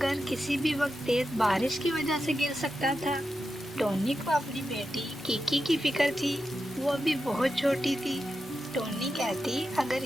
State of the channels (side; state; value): both; normal; correlation 0.89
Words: किसी भी वक्त तेज बारिश की वजह से गिर सकता था। टोनी को अपनी बेटी किकी की फिक्र थी। वो अभी बहुत छोटी थी। टोनी कहती, अगर